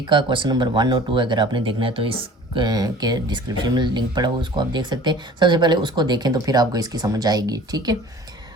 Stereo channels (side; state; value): both; normal; correlation 0.46